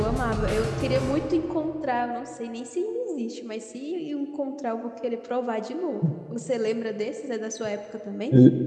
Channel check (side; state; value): both; identical; correlation 1.00